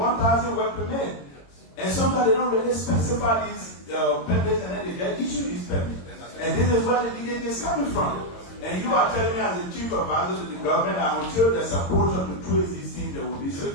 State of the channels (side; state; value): right; late; 22 ms